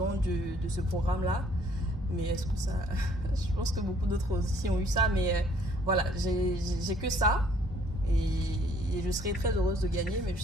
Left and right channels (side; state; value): both; normal; correlation 0.61